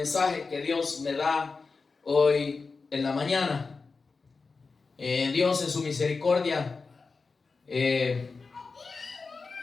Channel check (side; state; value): right; quieter; 4.4 dB